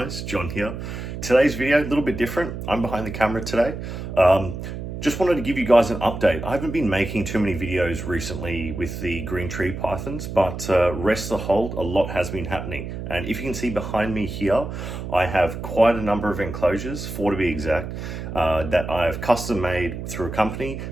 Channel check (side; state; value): right; noise; hum, 7 dB below the sound